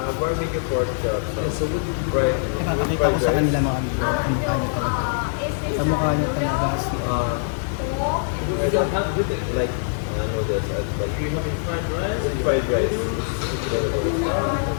Barbecue pork chop. Fried, Pakikita ko sa kanila mga amigo. Ang mukha niya talaga. Is this Sa mukha niya talaga si... like noodles as well. Fried rice? Fried rice.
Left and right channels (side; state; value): right; silent; 58 dB below the other